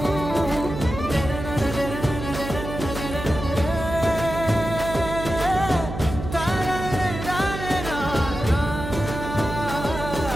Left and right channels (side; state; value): right; noise; hum, 7 dB below the sound